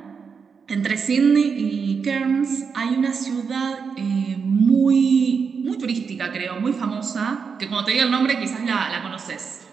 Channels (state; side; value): quieter; left; 5.8 dB